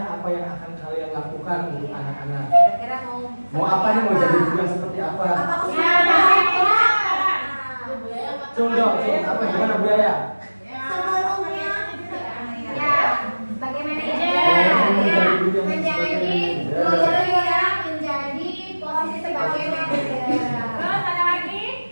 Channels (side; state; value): both; inverted; correlation -1.00